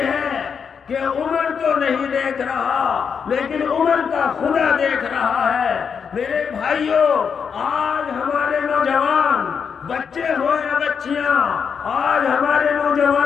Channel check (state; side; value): quieter; right; 6.5 dB